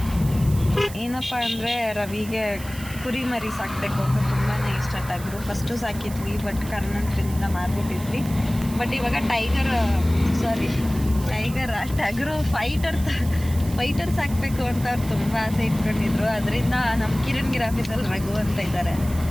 ಏನಪ್ಪ ಅಂದರೆ ರವಿಗೆ ಕುರಿ ಮರಿ ಸಾಕಬೇಕು ಅಂತ ತುಂಬಾ ಇಷ್ಟ. ಟಗರು ಫಸ್ಟು ಸಾಕಿದ್ವಿ, ಬಟ್ ಕಾರಣಾಂತರದಿಂದ ಮಾರ್ಬಿಟ್ಟಿದ್ವಿ. ಬಟ್ ಇವಾಗ ಟಗರು ಫೈಟರ್ ಸಾಕಬೇಕು ಅಂತ ಅವ್ರು ತುಂಬ ಆಸೆ ಇಟ್ಕೊಂಡಿದ್ರು. ಅದರಿಂದ ನಮ್ಮ ಕಿರಣ್ ಆಫೀಸಲ್ಲಿ ರಘು ಅಂತ ಇದ್ದಾರೆ,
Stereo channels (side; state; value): right; noise; hiss, 15 dB below the sound